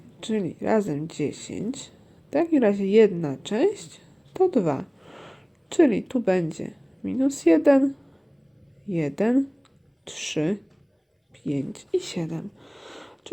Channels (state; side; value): identical; both; correlation 1.00